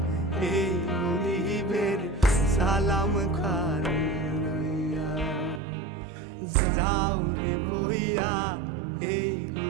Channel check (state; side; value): drops out; left; at 5.6 s